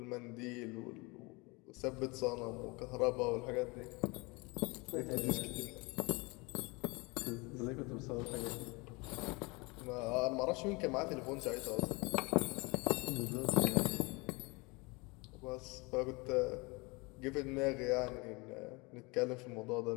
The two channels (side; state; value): right; quieter; 26.9 dB